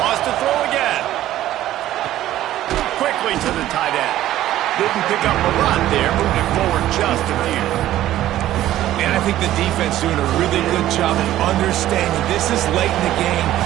Wants to throw again. Quickly to the tight end. Didn't pick up a lot there. Moved it forward just a few. And I think the defense doing a really good job of understanding this is late in the game.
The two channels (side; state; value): left; quieter; 13.6 dB